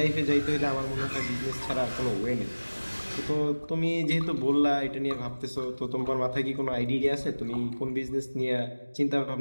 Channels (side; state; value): both; inverted; correlation -1.00